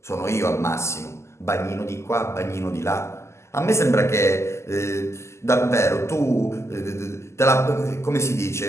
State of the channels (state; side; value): late; right; 0.13 ms